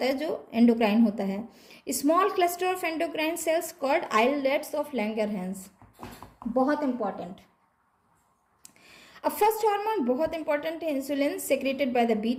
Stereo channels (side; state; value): both; identical; correlation 1.00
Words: है जो एंडोक्राइन होता है। Small cluster of endocrine cells called islets of Langerhans, बहुत इंपॉर्टेंट। अब फर्स्ट हार्मोन बहुत इंपॉर्टेंट है, insulin secreted by the